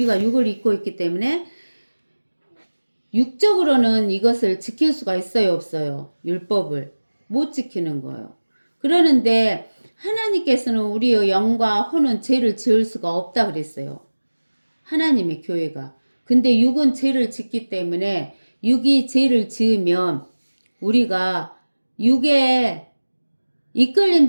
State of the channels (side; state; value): both; inverted; correlation -1.00